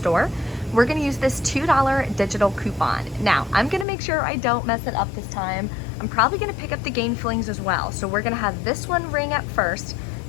We're gonna use this $2 digital coupon. Now, I'm gonna make sure I don't mess it up this time. I'm probably gonna pick up the Gain Flings as well. So we're gonna have this one ring up first,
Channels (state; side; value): drops out; right; at 3.9 s